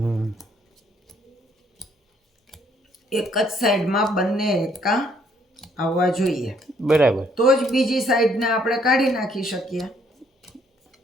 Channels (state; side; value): normal; both; correlation 0.66